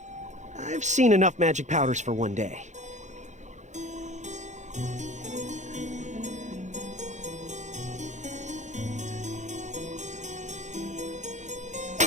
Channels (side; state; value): left; late; 0.35 ms